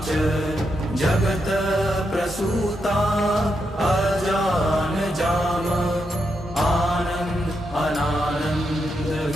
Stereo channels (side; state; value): both; normal; correlation 0.83